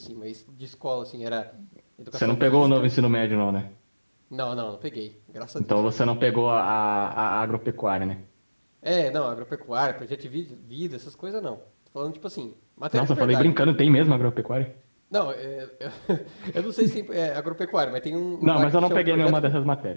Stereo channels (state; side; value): inverted; both; correlation -1.00